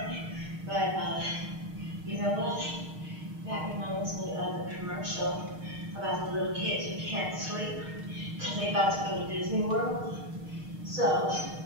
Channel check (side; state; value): left; late; 6.5 ms